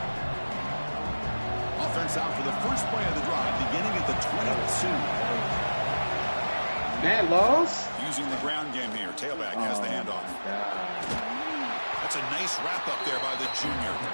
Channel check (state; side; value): inverted; both; correlation -1.00